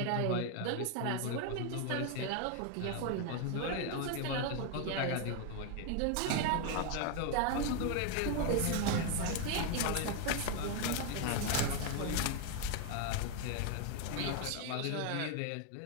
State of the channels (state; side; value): different; both; correlation 0.01